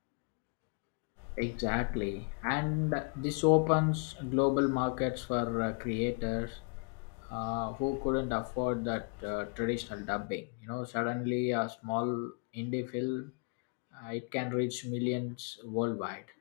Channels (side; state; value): right; quieter; 36.2 dB